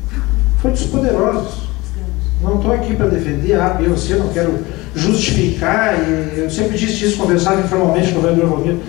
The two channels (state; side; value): quieter; right; 21.8 dB